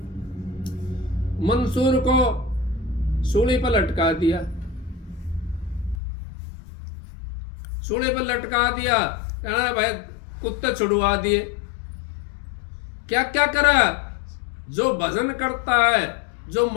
मंसूर को सूली पर लटका दिया, सूली पर लटका दिया, कहना भाई कुत्ते छुड़वा दिए। क्या क्या करा? जो भजन करता है, जो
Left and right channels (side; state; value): right; drops out; at 6.0 s